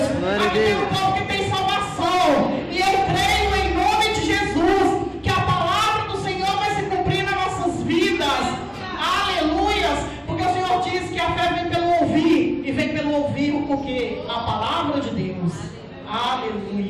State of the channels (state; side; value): identical; both; correlation 1.00